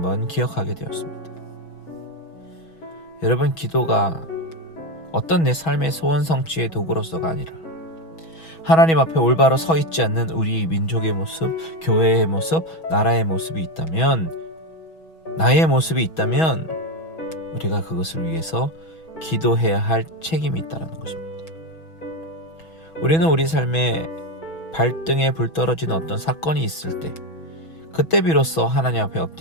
기억하게 되었습니다. 여러분, 기도가 어떤 내 삶의 소원 성취의 도구로서가 아니라 하나님 앞에 올바로 서 있지 않는 우리 민족의 모습, 교회의 모습, 나라의 모습이 있다면, 나의 모습이 있다면 우리가 그것을 위해서 기도해야 할 책임이 있다는 것입니다. 우리는 우리 삶에 발등에 불 떨어진 어떤 사건이 있을 때, 그때 비로소 하나님 앞에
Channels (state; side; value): late; right; 6.2 ms